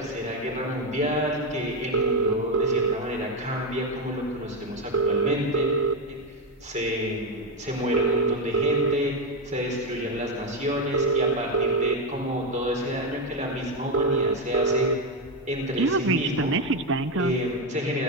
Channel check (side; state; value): both; normal; correlation 0.08